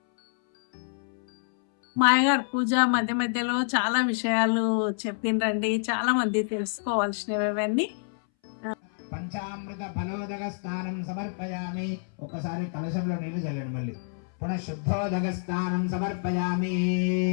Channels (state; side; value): silent; right; 60 dB below the other